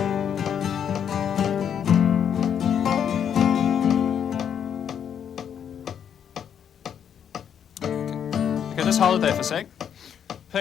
Okay, just hold it there for a sec.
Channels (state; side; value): quieter; right; 8.5 dB